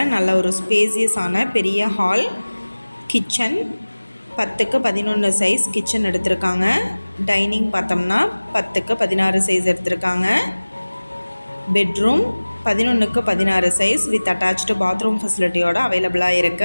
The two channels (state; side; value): inverted; both; correlation -1.00